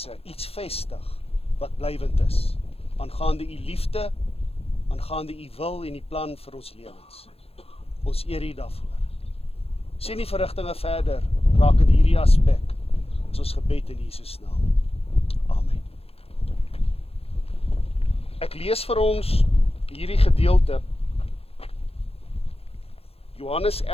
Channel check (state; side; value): late; right; 0.29 ms